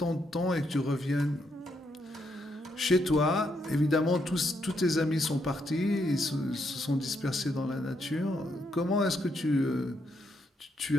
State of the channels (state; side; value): normal; both; correlation 0.77